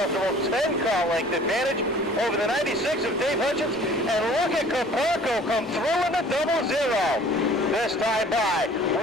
10-car length advantage over the 96 of Dave Hutchins. And look at Caparco come through in the 00. This time by.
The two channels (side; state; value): both; normal; correlation 0.51